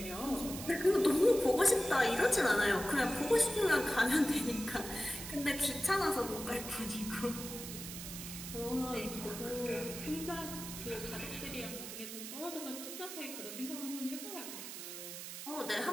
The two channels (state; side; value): noise; right; hiss, 9 dB below the sound